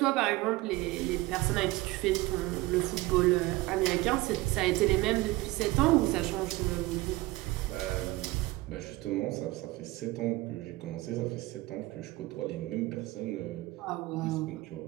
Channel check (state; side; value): quieter; left; 20.0 dB